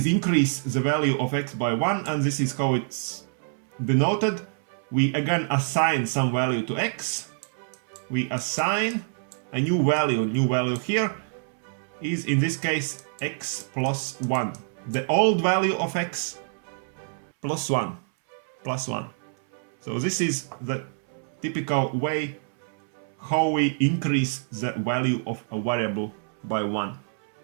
increase the value of x by 1, and this is how it's denoted. We again assign some value to x. We assign a new value. New value here is in this case x plus 1. The old value of x plus 1. Plus 1. So this is the typical way how we increase the value of a variable by 1.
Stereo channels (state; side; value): silent; left; 61 dB below the other